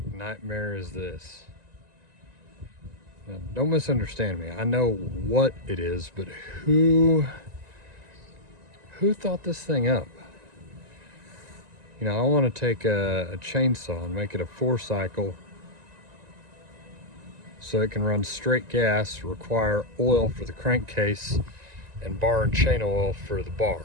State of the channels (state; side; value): late; left; 1.9 ms